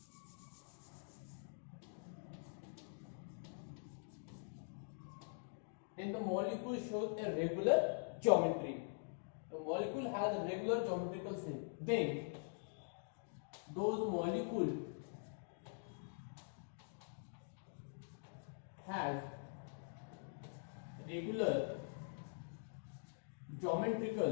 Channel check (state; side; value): silent; right; digital silence